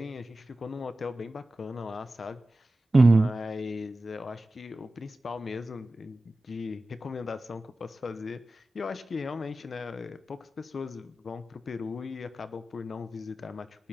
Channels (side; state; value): both; normal; correlation 0.95